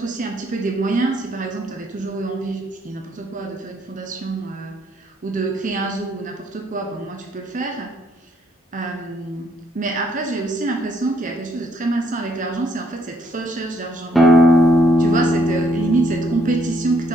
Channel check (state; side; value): normal; both; correlation 0.69